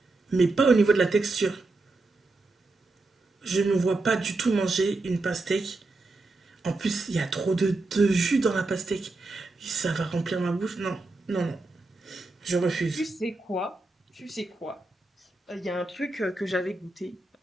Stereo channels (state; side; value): quieter; left; 3.2 dB